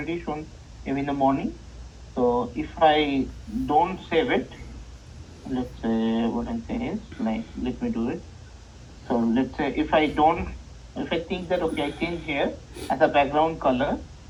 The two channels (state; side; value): identical; both; correlation 1.00